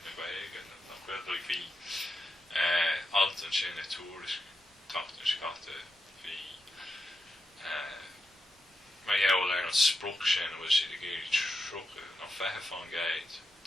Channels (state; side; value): normal; both; correlation 0.87